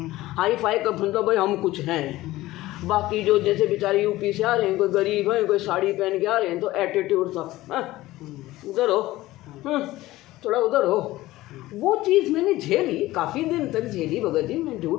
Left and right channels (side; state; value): right; quieter; 17.2 dB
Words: हाई फाई का मतलब भाई हम कुछ हैं, बाकी जो जैसे बेचारे यूपी से आ रहे हैं, कोई गरीब है, कोई साड़ी पहन के आ रहे हैं, तो एटीट्यूड था, उधर हो, थोड़ा उधर हो। वो चीज़ मैंने झेली, काफ़ी दिन तक झेली भगत जी, मैं